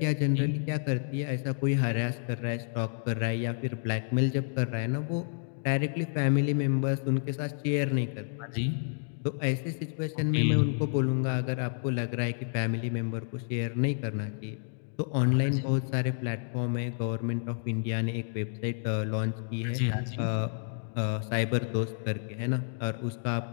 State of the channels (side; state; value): right; silent; digital silence